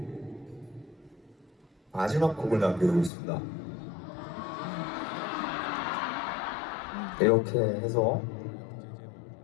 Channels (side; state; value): right; drops out; at 3.1 s